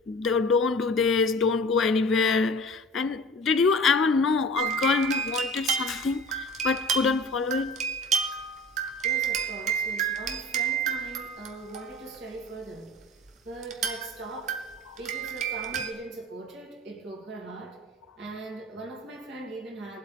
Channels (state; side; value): normal; both; correlation 0.41